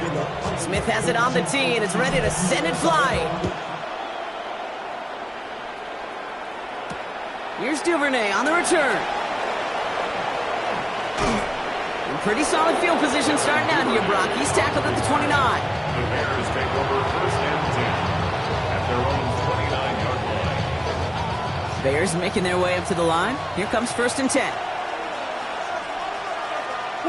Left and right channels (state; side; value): identical; both; correlation 1.00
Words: Smith has it on the tee and is ready to send it flying. Here's Duvernay on the return. Pretty solid field position starting out here, Brock. He's tackled at the 29. The Bears take over 1st and 10 at their own 29-yard line. Bears making their way up to the line. Here comes 1st and 10.